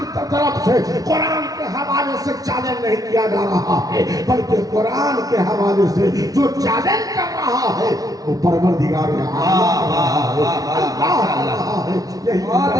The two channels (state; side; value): late; left; 0.18 ms